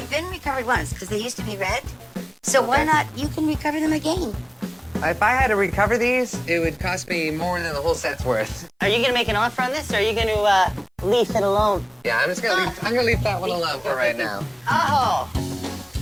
been recovered once because they used to be red. So why Okay. not? You can recover them again. If I had to recover these, it would cost me more than the whole set's worth. Are you gonna make an offer on this, or are you gonna leave it alone? Yeah, I'm gonna leave that one alone for right now. Oh.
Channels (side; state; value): both; identical; correlation 1.00